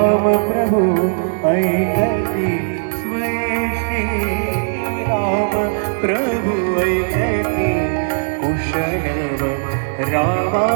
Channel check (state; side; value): silent; left; 61 dB below the other